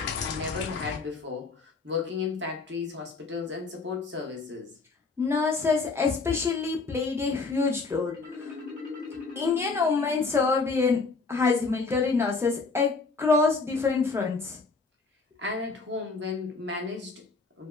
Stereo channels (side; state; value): right; quieter; 4.2 dB